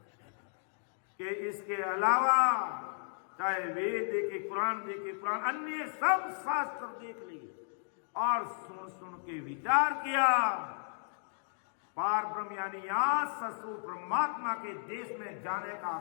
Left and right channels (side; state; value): right; silent; digital silence